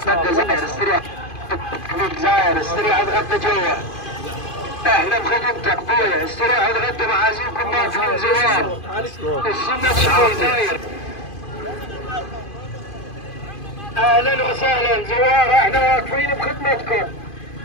زاير، استريح زاير، استريح تغدى جوا. اهلا بخدمتك بويا، استريح تغدى معازيمكم ما فيهم زوار. السنة شوي زاير. اهلا وسهلا زوار، احنا واقفين بخدمتكم.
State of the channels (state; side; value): late; right; 2.5 ms